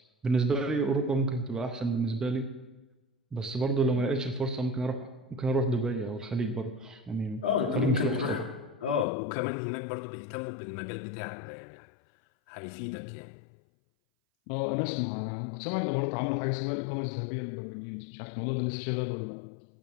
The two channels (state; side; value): drops out; right; at 9.1 s